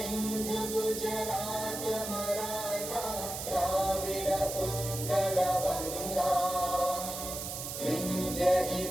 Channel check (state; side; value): noise; right; hiss, 6 dB below the sound